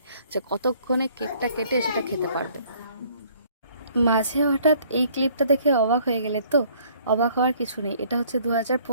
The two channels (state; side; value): inverted; both; correlation -0.59